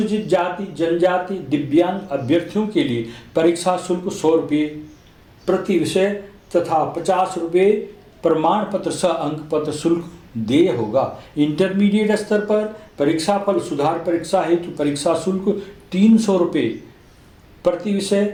जाति जनजाति दिव्यांग अभ्यर्थियों के लिए परीक्षा शुल्क 100 रुपये प्रति विषय तथा 50 रुपये प्रमाण पत्र सह अंक पत्र शुल्क देय होगा। इंटरमीडिएट स्तर पर परीक्षाफल सुधार परीक्षा हेतु परीक्षा शुल्क 300 रुपये प्रति विषय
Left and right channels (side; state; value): both; identical; correlation 1.00